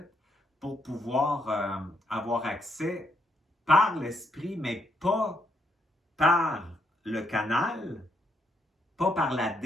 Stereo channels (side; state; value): both; normal; correlation 0.75